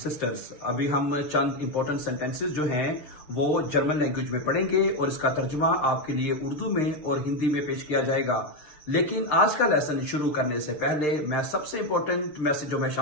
अभी हम चंद इंपॉर्टेंट सेंटेंसेस जो हैं वो जर्मन लैंग्वेज में पढ़ेंगे और इसका तर्जुमा आपके लिए उर्दू में और हिंदी में पेश किया जाएगा। लेकिन आज का लेसन शुरू करने से पहले मैं सबसे इंपॉर्टेंट मैसेज जो मैं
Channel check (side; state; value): right; late; 6.7 ms